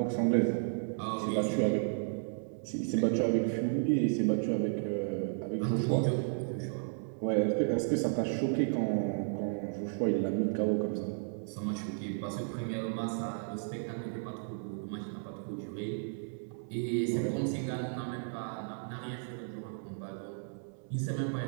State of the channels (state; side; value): silent; left; digital silence